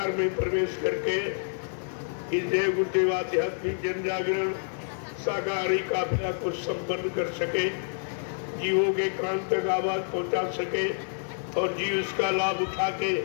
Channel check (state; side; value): silent; right; digital silence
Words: में प्रवेश करके इस जय गुरुदेव आध्यात्मिक जन जागरण शाकाहारी काफिला को संपन्न कर सके, जीवों के कान तक आवाज पहुंचा सके और जीव इसका लाभ उठा के